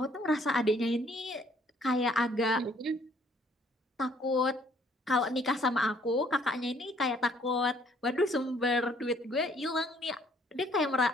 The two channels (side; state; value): both; normal; correlation 0.63